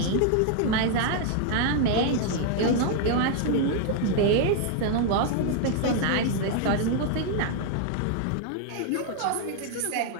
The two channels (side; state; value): both; different; correlation 0.00